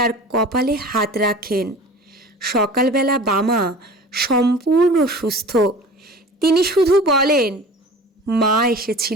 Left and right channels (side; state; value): both; normal; correlation 0.40